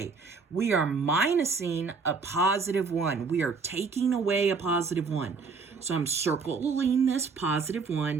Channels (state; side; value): quieter; left; 4.8 dB